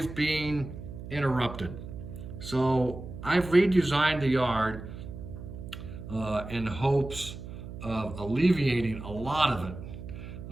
being interrupted. So I've redesigned the yard in hopes of alleviating a lot of it.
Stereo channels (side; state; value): right; noise; hum, 11 dB below the sound